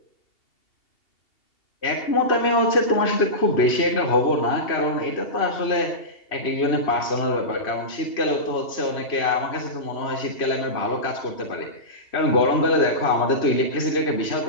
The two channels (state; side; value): late; right; 2.7 ms